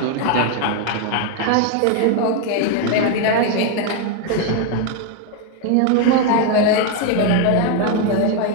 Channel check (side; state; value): both; different; correlation 0.01